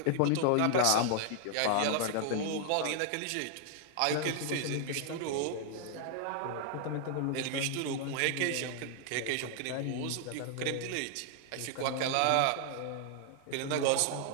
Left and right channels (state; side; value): different; both; correlation 0.00